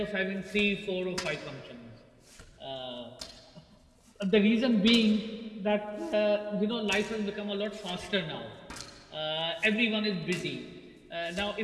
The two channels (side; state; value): both; identical; correlation 1.00